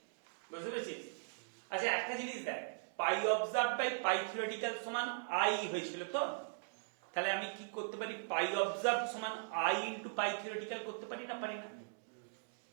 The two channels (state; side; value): silent; left; digital silence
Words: বুঝতে পেরেছিস? আচ্ছা একটা জিনিস দেখ, পাই অবজার্ভ বাই পাই থিওরিটিক্যাল সমান i হয়েছিল তো, তাহলে আমি কি করতে পারি? পাই অবজার্ভ সমান i ইনটু পাই থিওরিটিক্যাল করতে পারি না, পারি না?